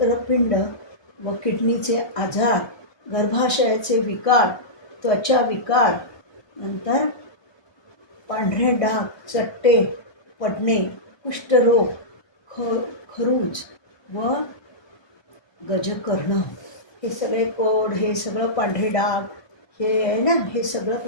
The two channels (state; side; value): late; right; 1.2 ms